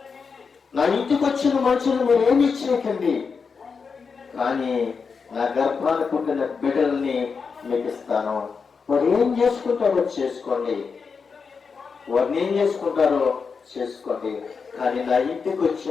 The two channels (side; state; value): right; quieter; 5.4 dB